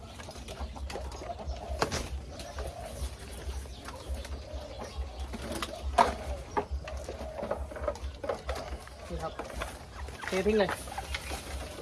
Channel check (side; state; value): both; identical; correlation 1.00